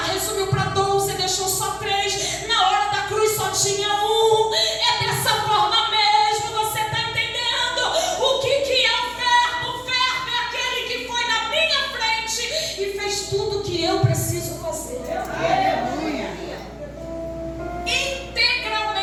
para 12, deixou só 3, na hora da cruz só tinha um. É dessa forma mesmo, você está entendendo o que é o verbo? O verbo é aquele que foi na minha frente e fez tudo o que eu preciso fazer.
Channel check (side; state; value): both; identical; correlation 1.00